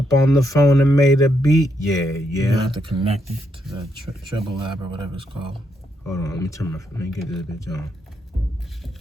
on the phone and made a beat. Yeah. You have to connect it to the treble lab or whatever it's called. Hold on, let me get this bitch on.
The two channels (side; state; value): both; normal; correlation 0.78